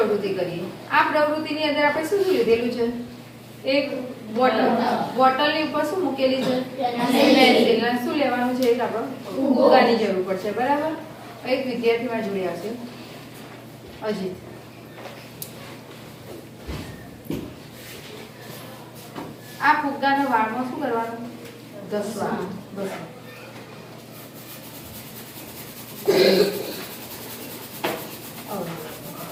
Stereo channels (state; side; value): identical; both; correlation 1.00